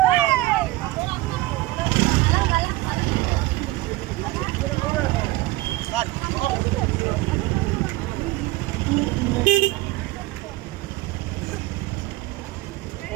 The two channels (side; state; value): left; quieter; 18.6 dB